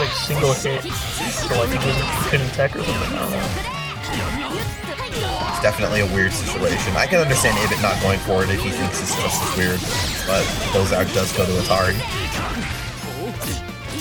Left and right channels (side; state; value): both; identical; correlation 1.00